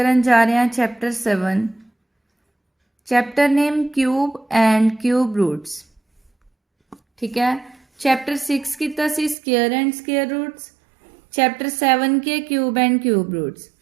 जा रहे हैं chapter 7। Chapter name cube and cube roots. ठीक है। चैप्टर 6 किया सी square and square roots. Chapter 7 के क्यूब एंड क्यूब रूट्स।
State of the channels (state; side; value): drops out; left; at 9.3 s